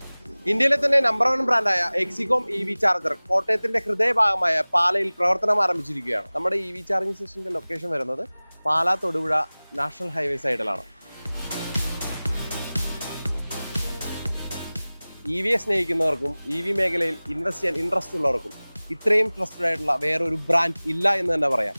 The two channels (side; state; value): both; inverted; correlation -0.99